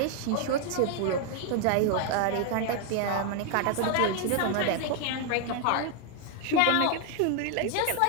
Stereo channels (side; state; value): both; different; correlation 0.00